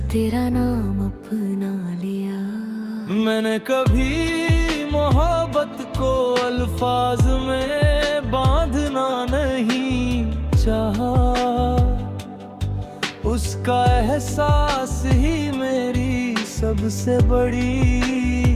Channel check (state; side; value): identical; both; correlation 1.00